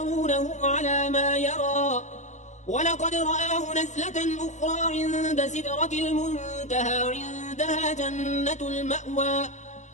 على ما يرى ولقد رآه نزلة أخرى عند سدرة المنتهى عندها جنة المأوى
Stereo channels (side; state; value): right; late; 0.34 ms